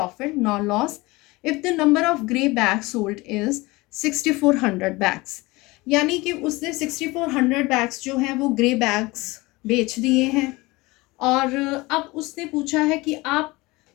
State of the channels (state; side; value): quieter; right; 22.3 dB